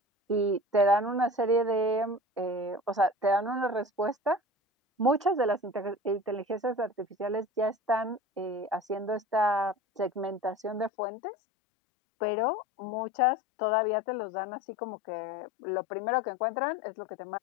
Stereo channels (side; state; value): right; drops out; at 10.9 s